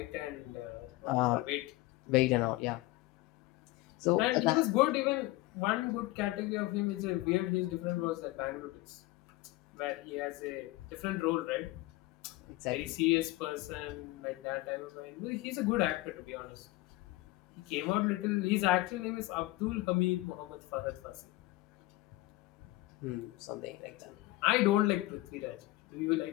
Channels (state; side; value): quieter; right; 19.2 dB